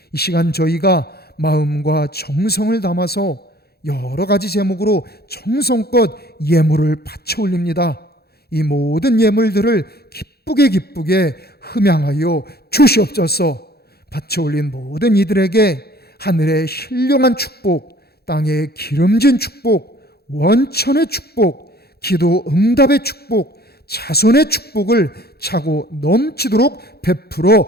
이 시간 저희가 마음과 정성을 담아서 여러 가지 제목으로 정성껏 예물을 바쳐 올립니다. 이 모든 예물들을 기쁘게 흠양하여 주시옵소서. 바쳐 올린 모든 이들에게 하늘의 신령한 축복, 땅의 기름진 축복, 원천의 축복, 기도 응답의 축복, 자손의 축복을 차고 넘치도록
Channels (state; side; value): late; right; 0.46 ms